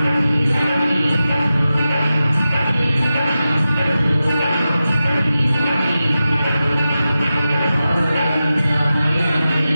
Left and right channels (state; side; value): inverted; both; correlation -0.93